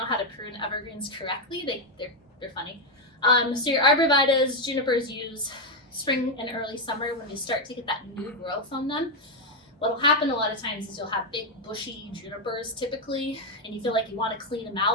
how to prune evergreens correctly. They're funny. So your arborvitaes, junipers use spring and early summer when you start to get that new growth on them. What'll happen a lot of times is you'll have big bushy junipers typically, and you feel like you want to clean them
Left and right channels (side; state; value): both; normal; correlation 0.03